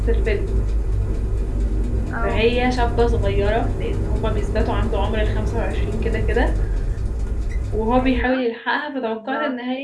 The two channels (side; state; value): both; identical; correlation 1.00